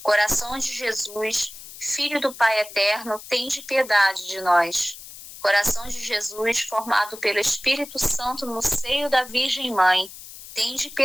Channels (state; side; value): noise; left; hiss, 15 dB below the sound